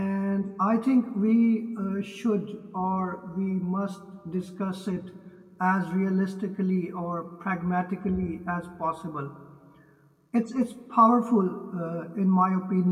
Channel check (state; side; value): identical; both; correlation 1.00